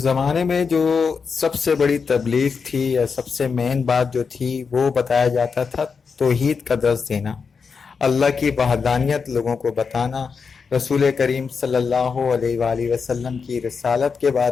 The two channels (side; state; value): right; quieter; 5.5 dB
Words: میں جو سب سے بڑی تبلیغ تھی یا سب سے مین بات جو تھی وہ بتایا جاتا تھا توحید کا درس دینا, اللہ کی وحدانیت لوگوں کو بتانا, رسول کریم صلی اللہ علیہ وآلہ وسلم کی رسالت کے